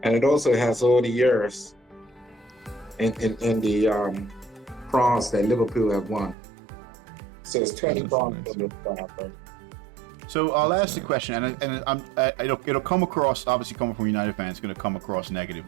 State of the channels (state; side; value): drops out; left; at 6.4 s